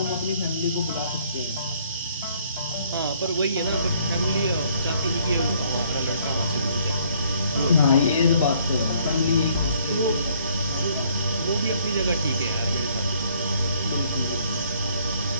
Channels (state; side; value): inverted; both; correlation -0.64